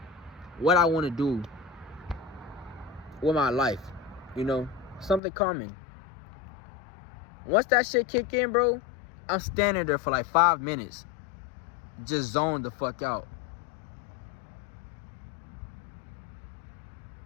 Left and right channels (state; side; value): drops out; right; at 5.2 s